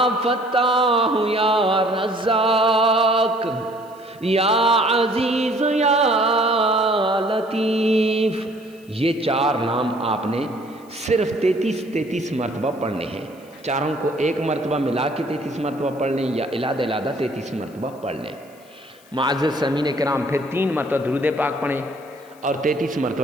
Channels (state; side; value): noise; left; hiss, 28 dB below the sound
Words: فتاح یا رزاق یا عزیز یا لطیف، یہ 4 نام آپ نے صرف 33 مرتبہ پڑھنے ہیں۔ چاروں کو ایک مرتبہ ملا کے 33 مرتبہ پڑھ لیں یا علیحدہ 33 مرتبہ پڑھ لیں۔ معزز سامعین کرام، پھر 3 مرتبہ درود پاک پڑھیں، اور 33